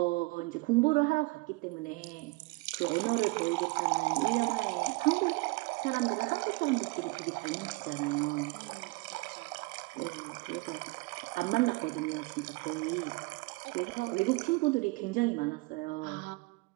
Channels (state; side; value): quieter; left; 25.3 dB